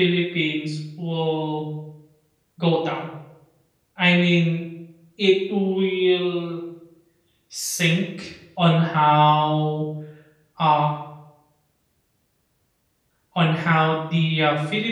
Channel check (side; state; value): both; identical; correlation 1.00